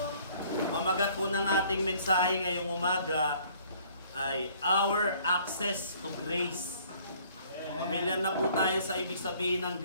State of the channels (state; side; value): inverted; both; correlation -0.58